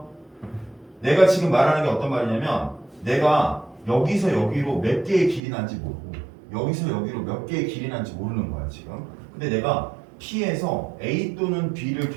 내가 지금 말하는 게 어떤 말이냐면 내가 여기서 여기로 몇 개의 길이 난지 모르고 여기서 여기로 몇 개의 길이 난지 모르는 거야 지금. 근데 내가 P에서 A 또는 B를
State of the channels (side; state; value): left; drops out; at 5.4 s